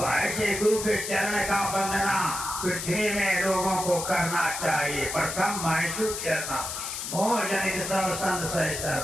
ऐसे गुरु के चरण का वंदना पृथ्वी में लोगों को करना चाहिए। प्रथम महसूस करना, मोह जनित सब संत सह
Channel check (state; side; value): noise; left; hiss, 5 dB below the sound